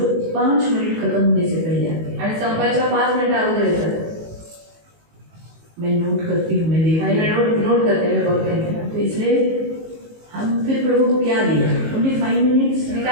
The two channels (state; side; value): late; left; 19 ms